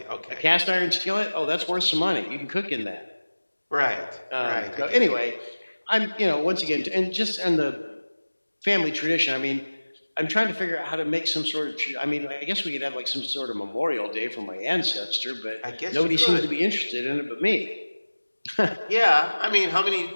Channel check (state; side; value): inverted; both; correlation -1.00